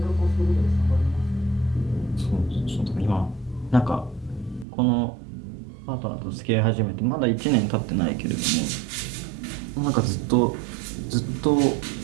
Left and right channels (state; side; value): drops out; left; at 4.7 s